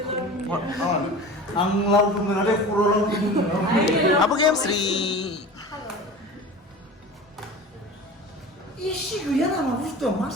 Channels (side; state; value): both; normal; correlation 0.35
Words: आं लावदुम मोनाखै खर' लावदुम आबो गेमस्रि इसे गैया नामा बुस्थुआ मा